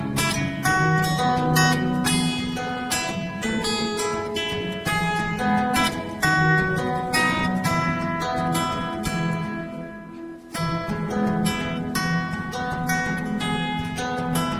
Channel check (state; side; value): identical; both; correlation 1.00